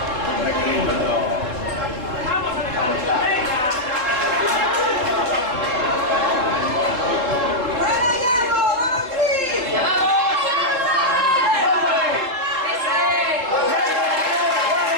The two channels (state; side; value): late; left; 3.8 ms